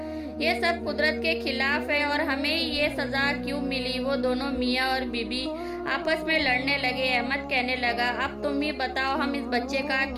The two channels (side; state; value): both; identical; correlation 1.00